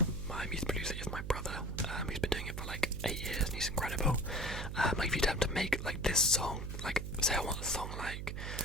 music producer is my brother. He's been doing it for like 8 years, and he's incredible. Like if you attempt to make like this song, like say I want a song like,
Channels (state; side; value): noise; right; hum, 5 dB below the sound